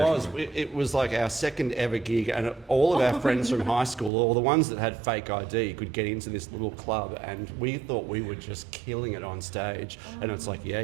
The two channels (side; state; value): left; drops out; at 4.1 s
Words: it was like our second ever gig, and all of our friends from high school, or the ones that had fake ID, could get into this little club, and we thought we were just killing it on stage. And it's like, yeah,